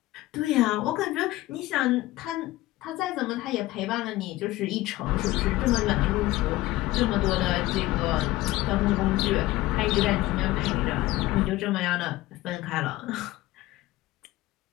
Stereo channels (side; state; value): right; quieter; 17.6 dB